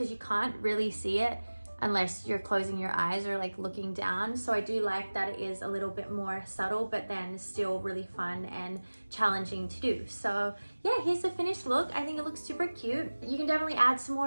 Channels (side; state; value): both; inverted; correlation -1.00